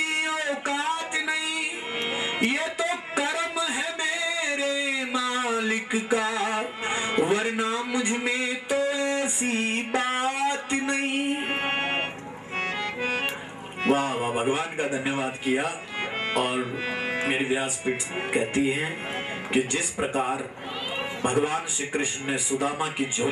औकात नहीं, ये तो कर्म है मेरे मालिक का, वरना मुझ में तो ऐसी बात नहीं। वाह वाह भगवान का धन्यवाद किया। और मेरी व्यासपीठ कहती है कि जिस प्रकार भगवान श्री कृष्ण ने सुदामा की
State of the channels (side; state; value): both; identical; correlation 1.00